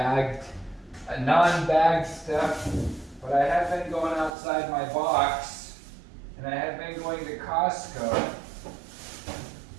non-bagged stuff, but I have been going outside my box, and I have been going to Costco.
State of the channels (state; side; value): drops out; left; at 4.4 s